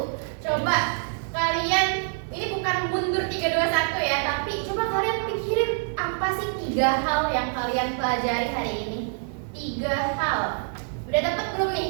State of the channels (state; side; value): silent; left; 61 dB below the other